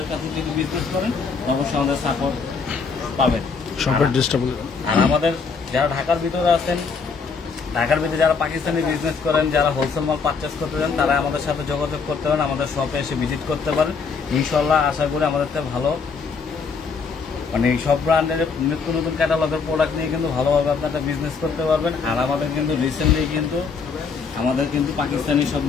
কাছে যদি বিজনেস করেন অবশ্যই আমাদের সাপোর্ট পাবেন। আর আমাদের যারা ঢাকার ভিতরে আছেন, ঢাকার ভিতরে যারা পাকিস্তানি বিজনেস করেন, যারা হোলসেল মাল পারচেস করতে চান, তারা আমাদের সাথে যোগাযোগ করতে পারেন, আমাদের শপে এসে ভিজিট করতে পারেন। ইনশাল্লাহ আশা করি আমাদের থেকে ভালো, মানে সব ব্র্যান্ডের নিত্য নতুন ক্যাটালগের প্রোডাক্ট নিয়ে কিন্তু ভালোভাবে আপনারা বিজনেস করতে পারবেন। আর আমাদের কিন্তু রিসেন্টলি কিন্তু আমাদের কিন্তু পাকিস্তানি সব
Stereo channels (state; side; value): quieter; right; 5.2 dB